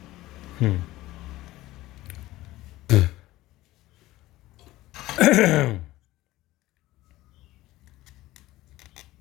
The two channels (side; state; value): right; quieter; 17.0 dB